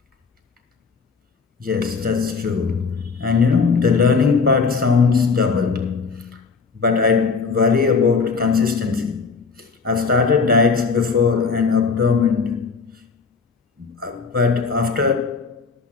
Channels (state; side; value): quieter; right; 5.0 dB